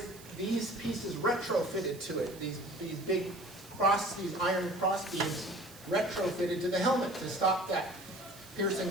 these pieces retrofitted to it, these big these iron cross beams retrofitted to the helmet to stop that piercing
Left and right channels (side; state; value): right; noise; hiss, 19 dB below the sound